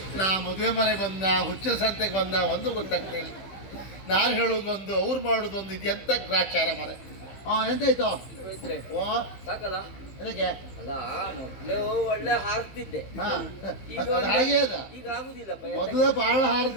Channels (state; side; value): late; right; 15 ms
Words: ನಾ ಮದುವೆ ಮನೆ ಬಂದ, ಹುಚ್ಚರ ಸಂತೆಗೆ ಬಂದ, ಒಂದು ಗೊತ್ತಾಗ್ತಿಲ್ಲ. ನಾನು ಹೇಳೋದೊಂದು, ಅವ್ರು ಮಾಡೋದೊಂದು. ಇದು ಎಂತ ಗ್ರಾಚಾರ ಮರೆ. ಎಂತಾಯ್ತು? ಸಾಕಲ್ಲ ಅದಕ್ಕೆ ಅಲ್ಲ, ಮೊದ್ಲು ಒಳ್ಳೆ ಹಾರ್ತಿದ್ದೆ. ಹಾಗೆ ಅದ. ಈಗ ಆಗುದಿಲ್ಲ. ಮೊದಲ ಬಹಳ